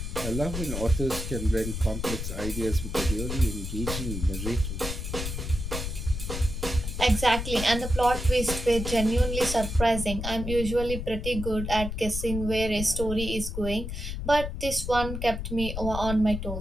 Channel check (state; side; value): noise; left; rumble, 5 dB below the sound